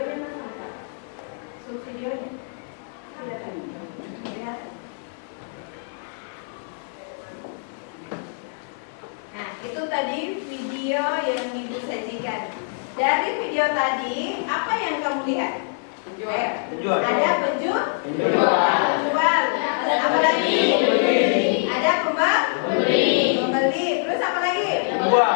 mana? Videonya. Kelihatan. Nah, itu tadi video yang Ibu sajikan. Dari video tadi, apa yang kamu lihat? Ayo. Ada penjual. Apa lagi?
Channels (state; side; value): silent; right; 62 dB below the other